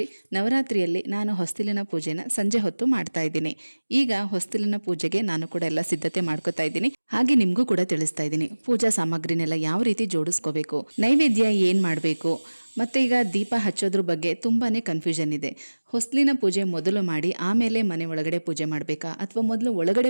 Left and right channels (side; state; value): both; inverted; correlation -1.00